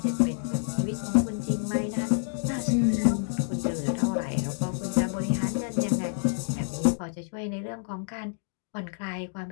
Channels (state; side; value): silent; right; digital silence